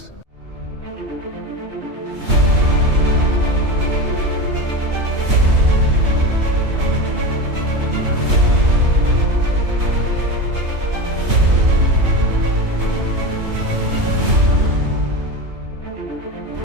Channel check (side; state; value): left; late; 3.2 ms